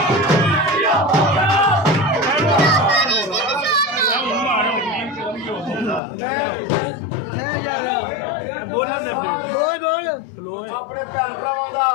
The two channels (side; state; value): right; drops out; at 6.0 s